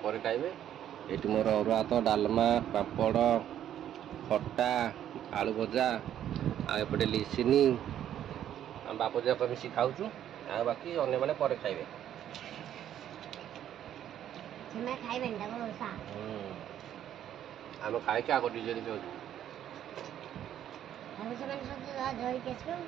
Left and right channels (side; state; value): left; quieter; 10.8 dB